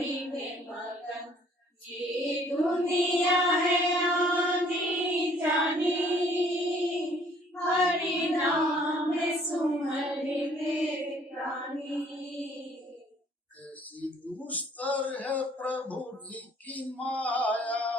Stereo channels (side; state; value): both; normal; correlation 0.59